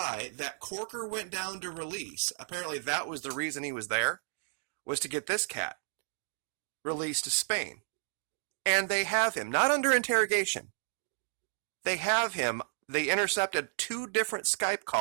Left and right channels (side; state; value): left; silent; digital silence